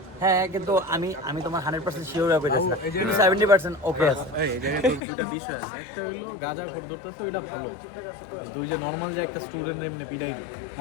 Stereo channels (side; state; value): right; drops out; at 5.0 s